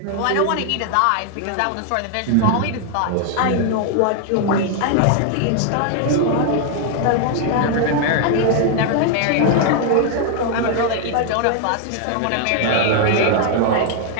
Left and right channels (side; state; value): both; different; correlation 0.00